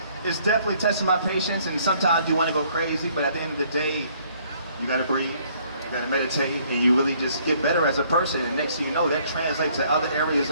definitely testing my patience, and sometimes you want to go crazy, but at the end of the day, you gotta breathe, you gotta meditate, and you really just get better as a person, and next thing you know, that translates to other areas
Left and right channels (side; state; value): both; inverted; correlation -0.63